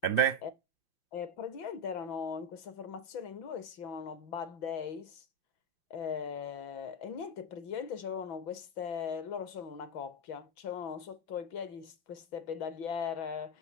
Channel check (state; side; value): late; right; 6.2 ms